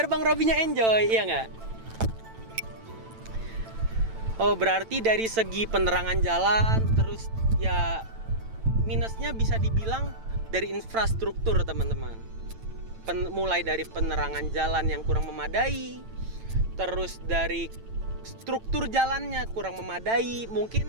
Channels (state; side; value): late; left; 9.0 ms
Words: Bang Robinya enjoy, iya nggak? Oh berarti dari segi penerangan jalan, terus ya minusnya bisa dibilang dari infrastruktur teman-teman. Mulai dari penerangan jalan yang kurang memadai, terus dari struktur jalannya kurang memadai, mungkin